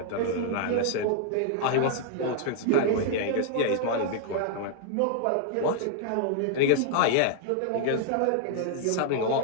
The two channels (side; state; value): both; different; correlation -0.01